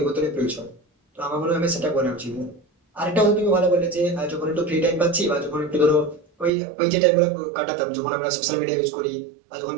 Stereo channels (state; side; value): drops out; left; at 6.5 s